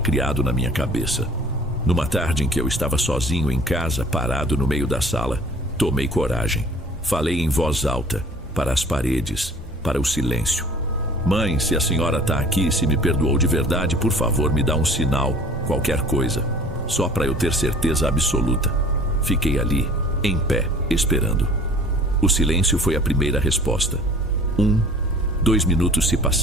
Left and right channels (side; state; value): both; normal; correlation 0.48